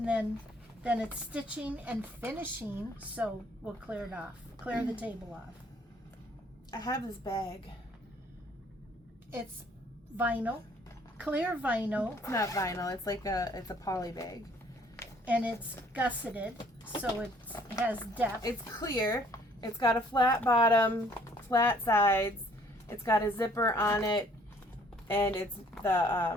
then it's stitching and finishing, so we'll clear it off. Clear the table off. I have this bag. It's vinyl, clear vinyl, It's not vinyl. It's like it's a poly bag. and it's gusseted, so it has depth. It's clear. It's got a flat bottom, flat sides. It's got a zipper on it, and it's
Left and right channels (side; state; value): both; normal; correlation 0.60